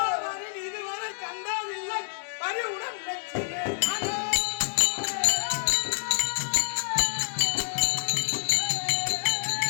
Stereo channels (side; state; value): right; silent; 60 dB below the other